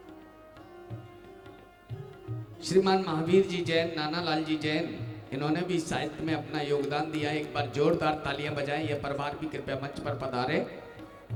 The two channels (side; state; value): both; identical; correlation 1.00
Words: श्रीमान महावीर जी जैन, नाना लाल जी जैन, इन्होंने भी साहित्य में अपना योगदान दिया। एक बार जोरदार तालियां बजाएं। यह परिवार भी कृपया मंच पर पधारे।